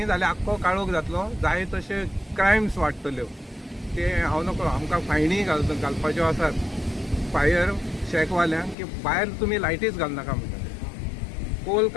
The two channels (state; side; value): drops out; right; at 8.8 s